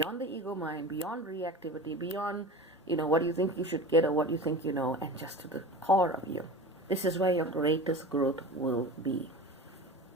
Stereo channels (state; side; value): normal; both; correlation 0.33